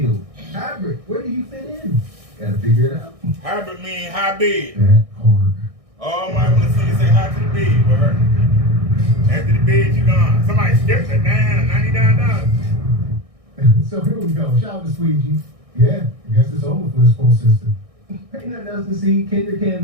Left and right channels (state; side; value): late; left; 1.6 ms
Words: Hybrid, where do you fit in? Gotta figure it out. Hybrid mean high bid. That hard. Oh, my, want to see you say hi to the bid with her. After the bid, you gone. Somebody skipped it down, $99. So here we go. Shout out to Squeegee. Yeah, I guess it's over for this post system. Ain't nothing else to see. Kendrick